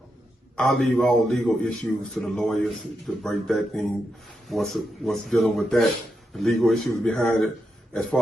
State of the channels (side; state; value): both; normal; correlation 0.85